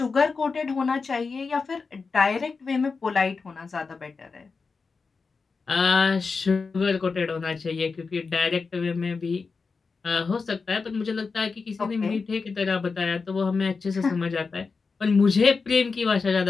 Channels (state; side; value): quieter; right; 4.7 dB